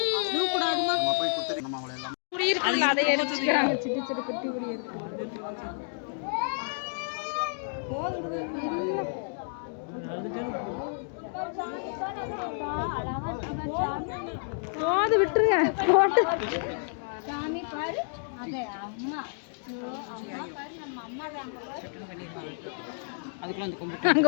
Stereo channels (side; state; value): right; silent; digital silence